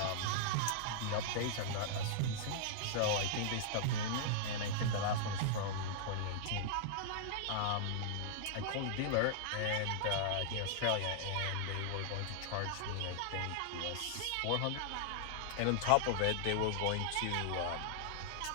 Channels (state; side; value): different; both; correlation -0.01